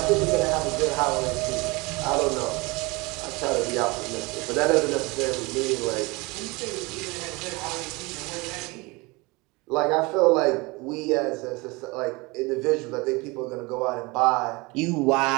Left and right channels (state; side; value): quieter; left; 25.1 dB